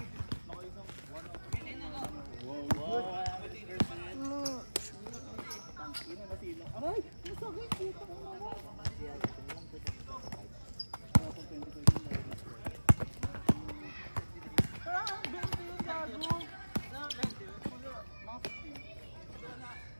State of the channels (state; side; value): inverted; both; correlation -1.00